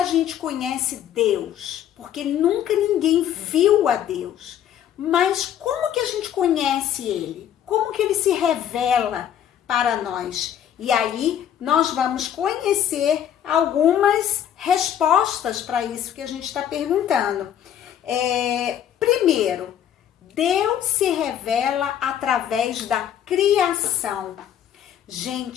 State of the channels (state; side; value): quieter; right; 10.0 dB